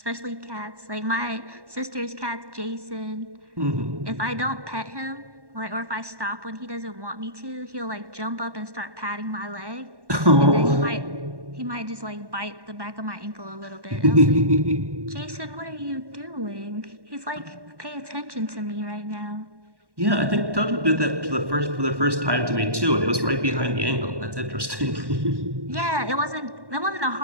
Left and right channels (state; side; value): late; left; 1.1 ms